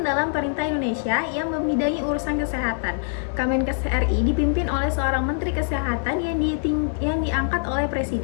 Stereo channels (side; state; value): right; silent; digital silence